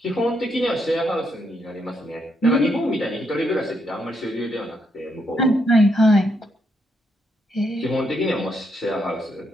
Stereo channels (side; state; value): both; normal; correlation 0.77